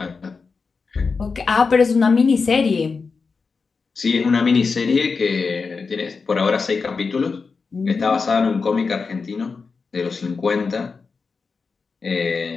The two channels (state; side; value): quieter; right; 4.8 dB